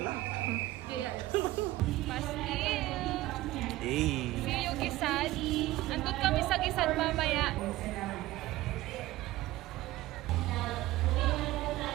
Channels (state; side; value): quieter; left; 17.2 dB